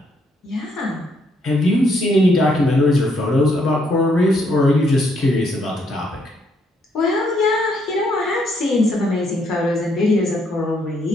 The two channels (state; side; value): normal; both; correlation 0.72